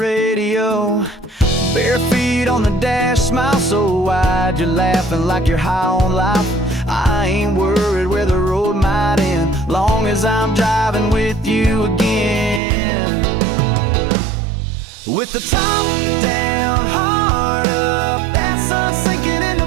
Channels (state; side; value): drops out; left; at 12.6 s